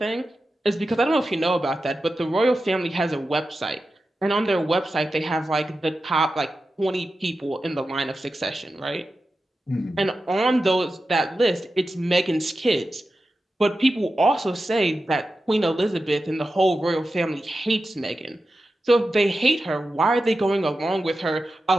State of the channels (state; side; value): normal; both; correlation 0.92